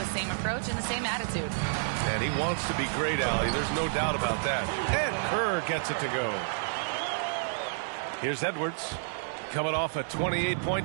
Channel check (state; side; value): silent; left; 58 dB below the other